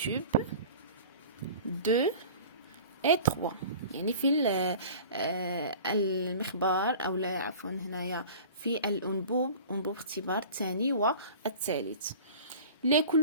2 et 3، يعني في المخبار أو لا عفوا هنايا في أنبوب اختبار الثاني والثالث. Les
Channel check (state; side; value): inverted; both; correlation -0.41